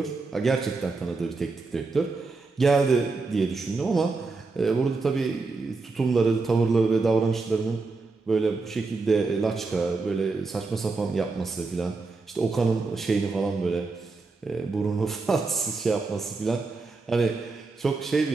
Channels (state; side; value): quieter; left; 3.9 dB